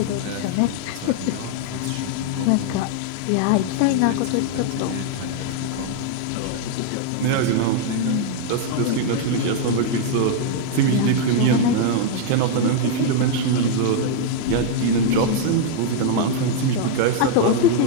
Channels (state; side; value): different; both; correlation 0.00